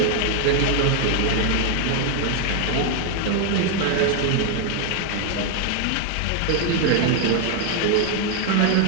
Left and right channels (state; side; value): different; both; correlation 0.01